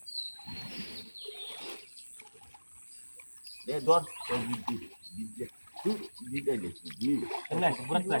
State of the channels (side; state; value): both; inverted; correlation -1.00